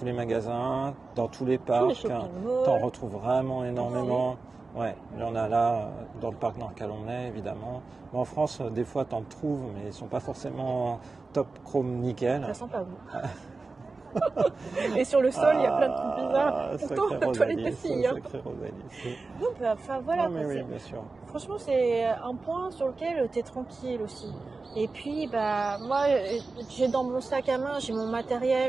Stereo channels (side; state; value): left; quieter; 3.8 dB